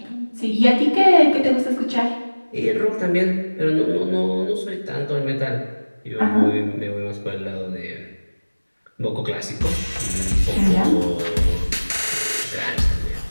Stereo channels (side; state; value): both; inverted; correlation -1.00